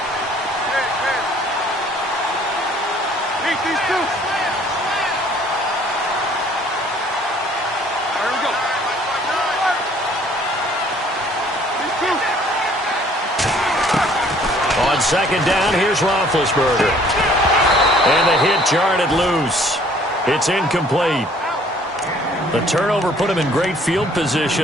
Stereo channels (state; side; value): normal; both; correlation 0.57